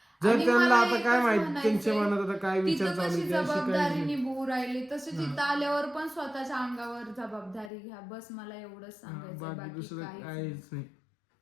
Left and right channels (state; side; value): drops out; right; at 7.7 s